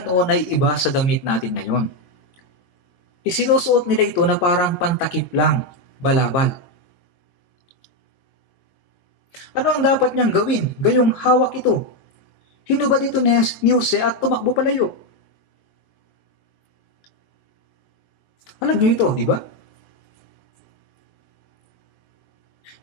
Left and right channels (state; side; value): late; right; 22 ms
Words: noon ay iba sa damit natin ngayon. Isinusuot nila ito na parang pantakip lang, balabal. Ano ang dapat niyang gawin? Gayong hawak ito. Hinubad ito ni Jose at tumakbo palayo. Alam niyo ito, di ba?